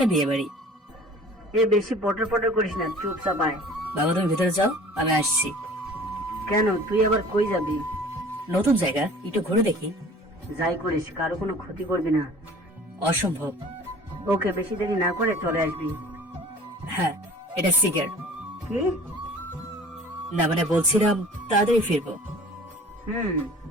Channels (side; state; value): both; normal; correlation 0.46